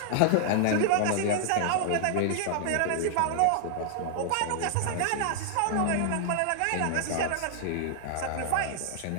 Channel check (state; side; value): different; both; correlation -0.01